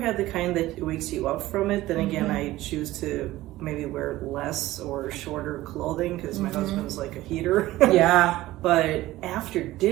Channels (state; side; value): quieter; left; 16.7 dB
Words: the kind that wakes you up from it. Then again, I choose to maybe wear less or shorter clothing because my husband's like a heater. Yeah. But after